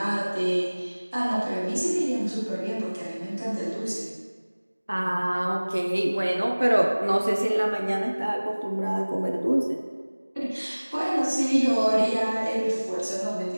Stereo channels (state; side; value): inverted; both; correlation -1.00